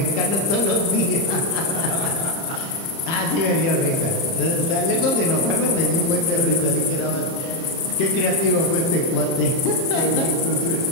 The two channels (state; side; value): late; right; 30 ms